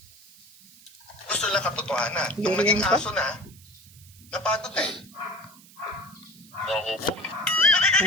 gusto nila katotohanan. Nung naging aso na, napagod na eh. Ako po.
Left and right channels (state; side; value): noise; right; hiss, 23 dB below the sound